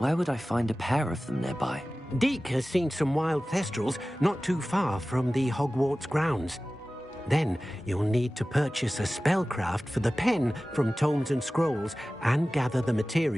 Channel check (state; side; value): normal; both; correlation 0.96